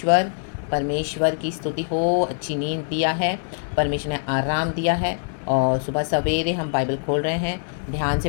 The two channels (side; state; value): right; silent; digital silence